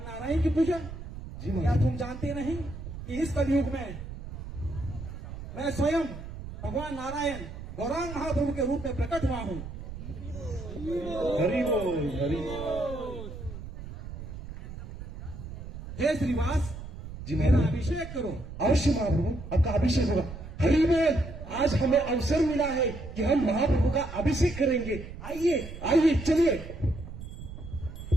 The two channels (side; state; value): right; noise; rumble, 11 dB below the sound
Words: नारायण की पूजा? जी क्या महाप्रभु। तुम जानते नहीं कि इस कलयुग में मैं स्वयं भगवान नारायण गौरांग महाप्रभु के रूप में प्रकट हुआ हूँ। हरि बोल, हरि बोल। हे श्रीवास, जी मेरा महाप्रभु। अभिषेक करो। अवश्य महाप्रभु, आपका अभिषेक होगा। हरि बोल। आज हमें अवसर मिला है कि हम महाप्रभु का अभिषेक करेंगे। आइए आइए, चलिए।